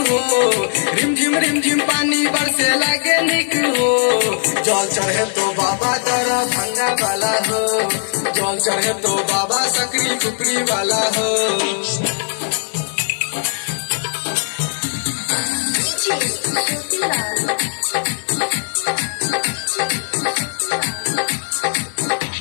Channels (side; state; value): right; silent; 55 dB below the other